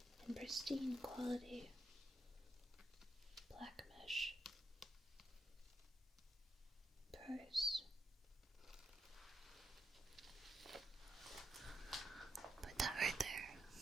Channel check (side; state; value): both; normal; correlation 0.81